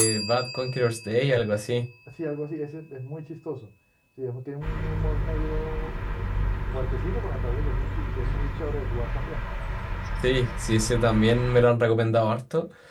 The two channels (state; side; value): identical; both; correlation 1.00